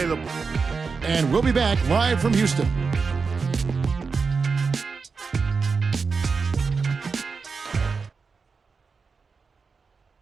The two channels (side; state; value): left; quieter; 4.9 dB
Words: And we'll be back live from Houston.